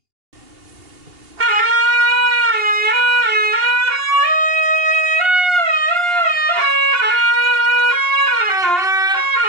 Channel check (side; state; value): left; late; 2.8 ms